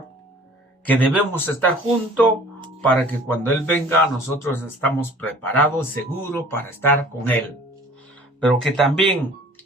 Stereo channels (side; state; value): both; normal; correlation 0.49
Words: que debemos estar juntos para que cuando Él venga nosotros estamos preparados, seguros para estar con Él. Pero que también